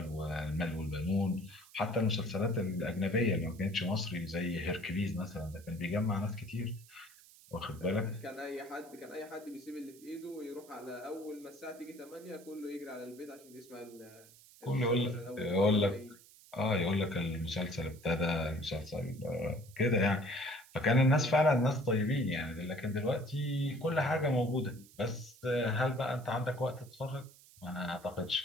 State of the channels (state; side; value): noise; right; hiss, 23 dB below the sound